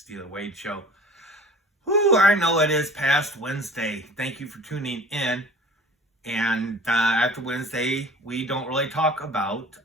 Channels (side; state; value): both; normal; correlation 0.45